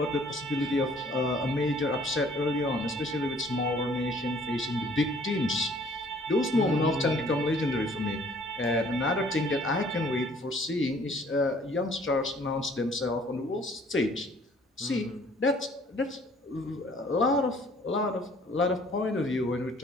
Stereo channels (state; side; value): normal; both; correlation 0.57